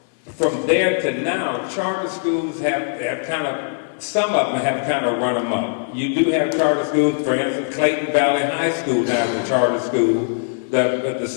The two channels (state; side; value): silent; right; digital silence